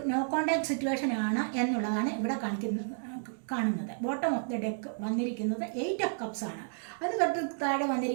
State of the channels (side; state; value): left; silent; digital silence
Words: നോ കോണ്ടാക്ട് സിറ്റുവേഷൻ ആണ് എന്നുള്ളതാണ് ഇവിടെ കാണുന്നത്. ബോട്ടം ഓഫ് ദ ഡെക്ക് വന്നിരിക്കുന്നത് 8 ഓഫ് കപ്സ് ആണ്. അതിന് തൊട്ട് താഴെ